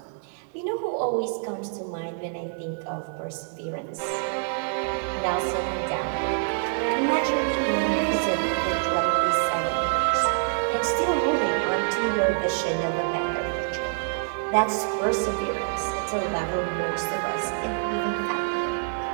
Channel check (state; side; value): silent; left; digital silence